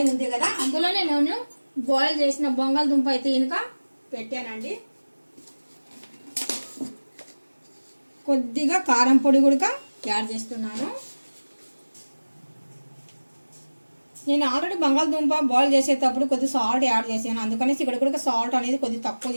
ఉంది కదా, అందులోనే నేను బాయిల్ చేసిన బంగాళదుంప అయితే ఇంకా పెట్టానండి. కొద్దిగా కారం పొడి కూడా యాడ్ చేస్తున్నాను. నేను ఆల్రెడీ బంగాళదుంప బాయిల్ చేసేటప్పుడు కొద్దిగా సాల్ట్ యాడ్ చేశాను, అందుకనేసి ఇక్కడ కూడా సాల్ట్ అనేది కొద్దిగా తక్కువ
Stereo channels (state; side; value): inverted; both; correlation -1.00